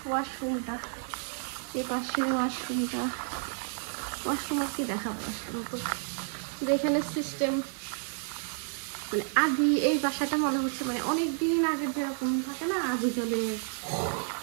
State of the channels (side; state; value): left; silent; 57 dB below the other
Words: ওয়াশরুমটা, এই পাশে ওয়াশরুমটা। ওয়াশরুম আর কি দেখাবো, ওয়াশরুম তো এখানে সিস্টেম, মানে আদি এই বাসাটা মনে হচ্ছে মানে অনেক দিন আগের যেরকম থাকে না, আদি জলে